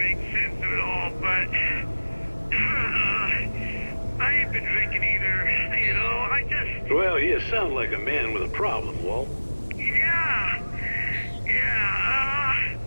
sense of it all, but, I ain't been drinking either, you know? I just... Well, you sound like a man with a problem, Walt.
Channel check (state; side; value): inverted; both; correlation -1.00